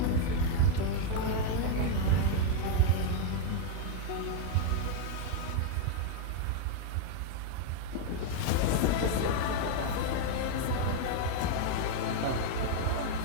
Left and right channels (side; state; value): both; different; correlation 0.00